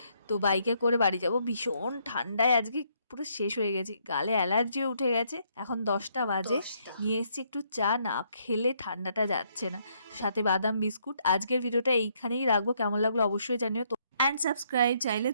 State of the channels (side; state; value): both; inverted; correlation -0.71